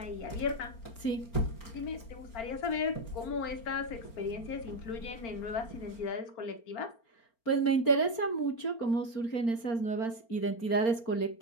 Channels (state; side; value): late; right; 4.4 ms